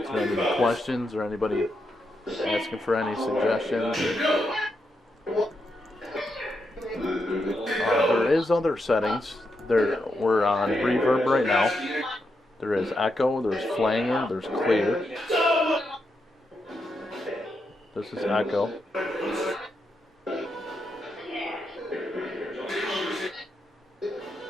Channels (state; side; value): normal; both; correlation 0.83